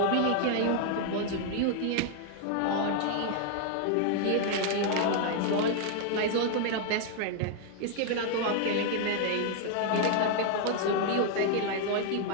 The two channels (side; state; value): both; different; correlation 0.00